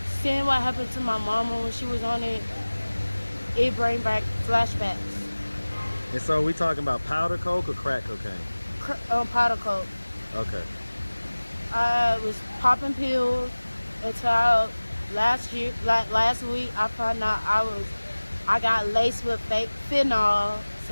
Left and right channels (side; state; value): both; inverted; correlation -1.00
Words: seeing what happened to my mama when she was on it, it bring back flashbacks. And so we talking about powder coke or crack cocaine? Powder coke. Okay. I was popping pills until last week I found out I got laced with fake fentanyl,